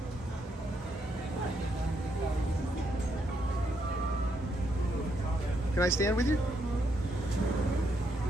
Can I stand with you?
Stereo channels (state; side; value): normal; both; correlation 0.77